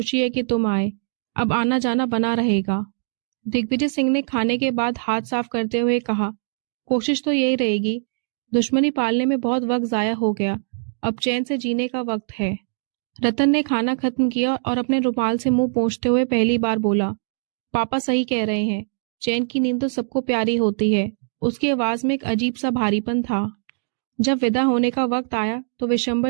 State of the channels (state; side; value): silent; left; digital silence